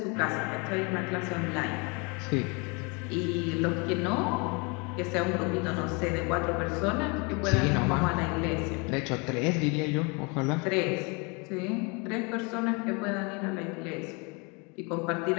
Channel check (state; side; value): quieter; right; 30.9 dB